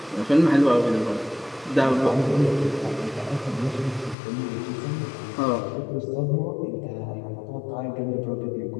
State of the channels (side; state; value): right; drops out; at 4.2 s